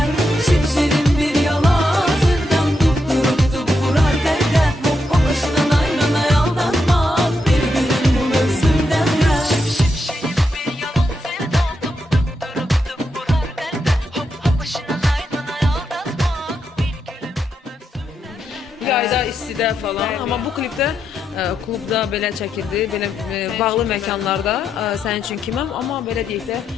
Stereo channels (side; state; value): both; normal; correlation 0.83